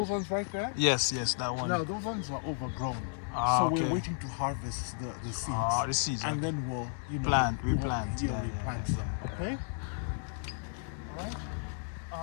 ones right there? Yes, that one. Now those ones are overgrown. So we're waiting to harvest the seeds. The seeds. And then we'll replant. replant them. Okay. Right.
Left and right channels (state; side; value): silent; right; digital silence